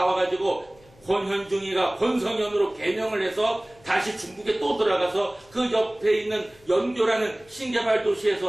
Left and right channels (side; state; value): left; noise; hum, 28 dB below the sound